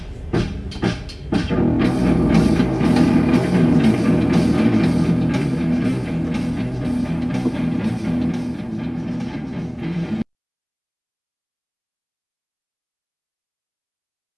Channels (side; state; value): both; identical; correlation 1.00